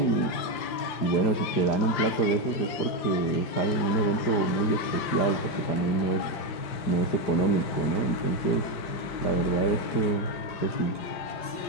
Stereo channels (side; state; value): right; late; 5.8 ms